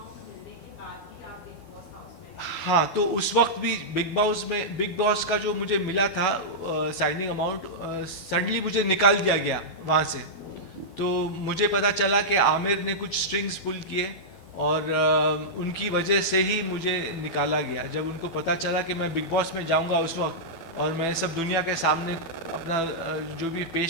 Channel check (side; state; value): right; late; 12 ms